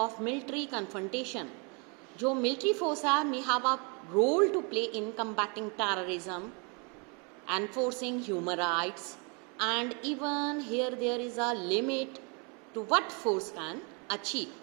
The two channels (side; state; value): left; quieter; 33.9 dB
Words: military confrontation. जो military force है may have a role to play in combating terrorism, enforcing human rights, and even here there is a limit to what force can achieve.